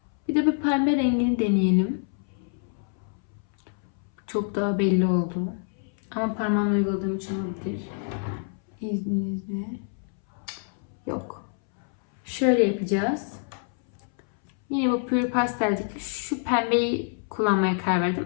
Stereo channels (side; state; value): right; silent; 61 dB below the other